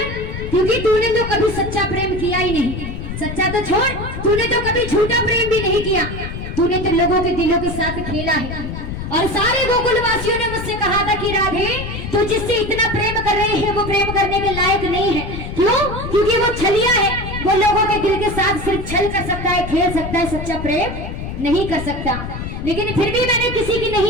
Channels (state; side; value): noise; left; rumble, 7 dB below the sound